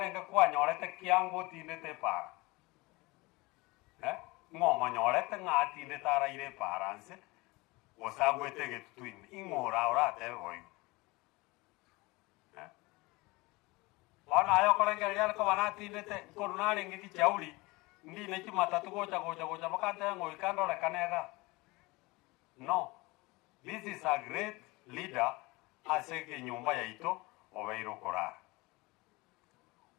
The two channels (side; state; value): right; quieter; 23.4 dB